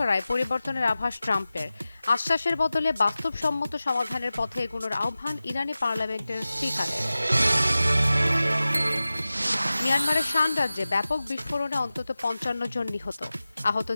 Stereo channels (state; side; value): inverted; both; correlation -0.96